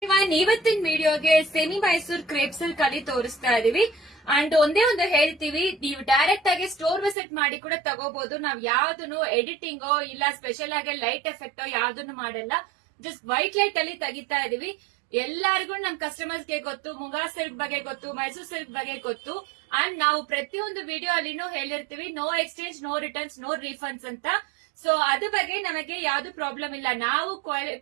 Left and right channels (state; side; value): drops out; left; at 7.2 s